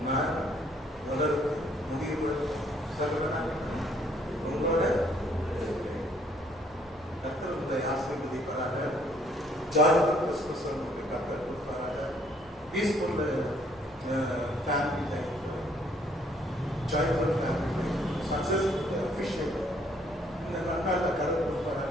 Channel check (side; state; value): both; normal; correlation 0.65